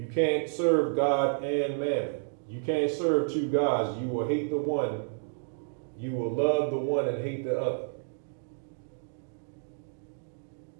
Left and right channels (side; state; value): left; silent; digital silence